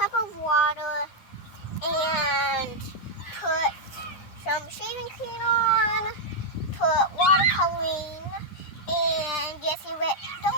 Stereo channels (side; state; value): right; late; 9.9 ms